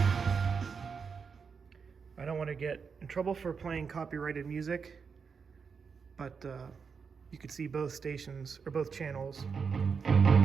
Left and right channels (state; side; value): quieter; left; 5.8 dB